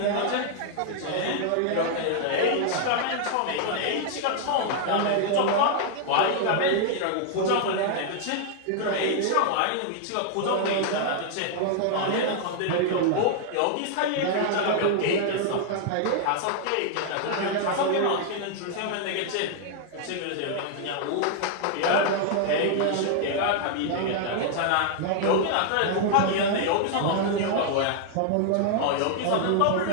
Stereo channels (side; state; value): both; different; correlation -0.01